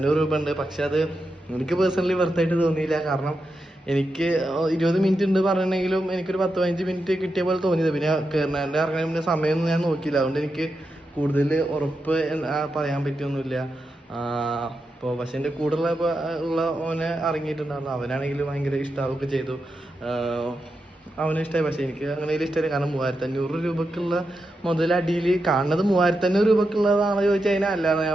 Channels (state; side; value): normal; both; correlation 0.87